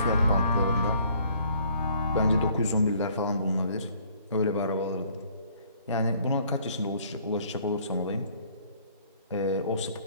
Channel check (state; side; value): inverted; both; correlation -0.61